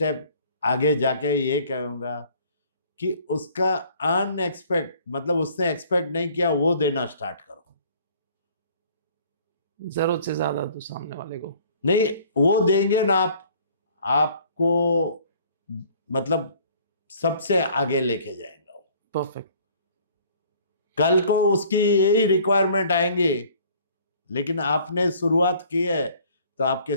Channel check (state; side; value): inverted; both; correlation -0.55